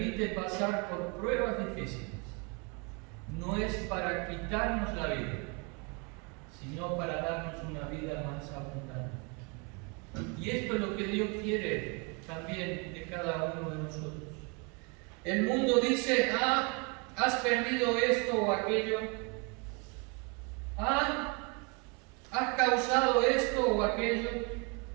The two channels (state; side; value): quieter; left; 32.3 dB